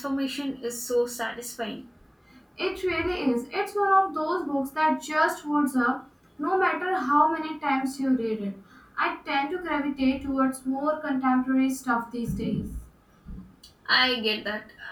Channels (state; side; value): identical; both; correlation 1.00